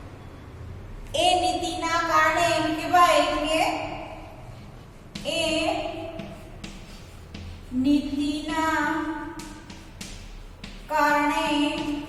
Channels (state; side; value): identical; both; correlation 1.00